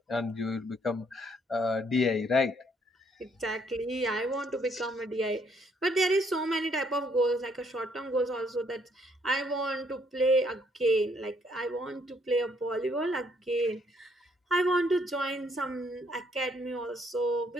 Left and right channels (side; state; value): both; normal; correlation 0.69